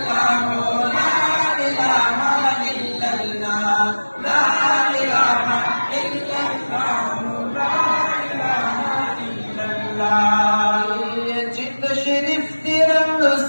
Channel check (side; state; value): both; inverted; correlation -1.00